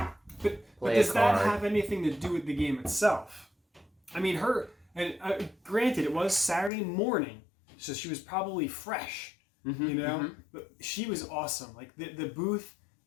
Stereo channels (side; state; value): right; drops out; at 6.7 s